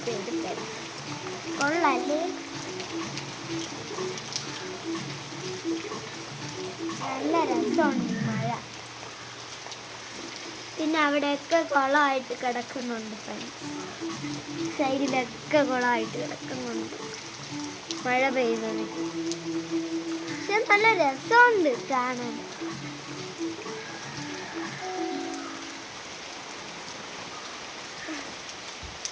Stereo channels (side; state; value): both; identical; correlation 1.00